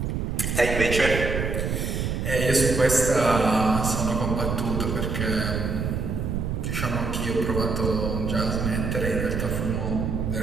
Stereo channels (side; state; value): right; noise; rumble, 1 dB below the sound